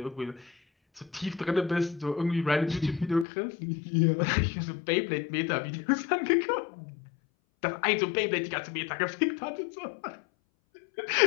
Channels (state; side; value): drops out; right; at 3.2 s